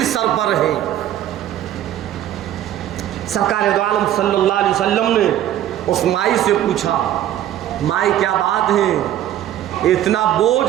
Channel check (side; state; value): left; quieter; 12.1 dB